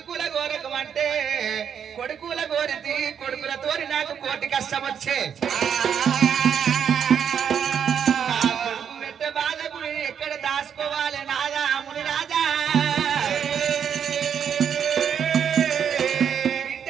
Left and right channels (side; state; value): left; quieter; 8.0 dB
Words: గోరకమంటే కొడుకుల గోరితి కొడుకులతోని నాకు కోటి కష్టం వచ్చే కొడుకు పెట్ట బాధకు ఎక్కడ దాచుకోవాలి నాదాముని రాజా బిడ్డ